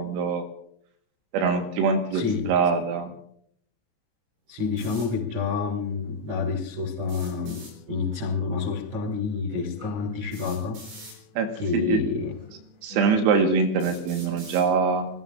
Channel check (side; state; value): left; late; 19 ms